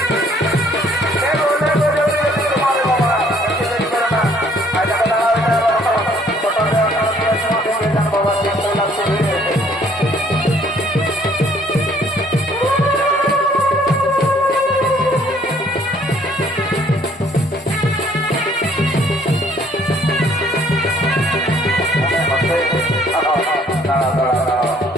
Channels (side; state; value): both; normal; correlation 0.61